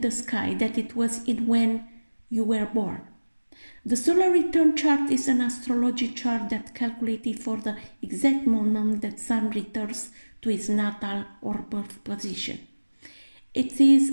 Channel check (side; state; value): both; inverted; correlation -1.00